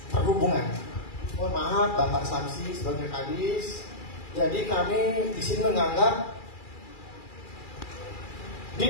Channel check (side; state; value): right; late; 2.4 ms